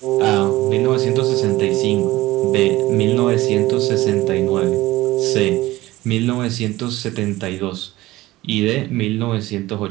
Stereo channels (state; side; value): quieter; left; 17.8 dB